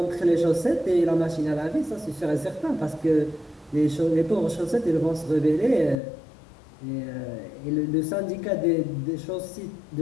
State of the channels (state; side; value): drops out; right; at 6.0 s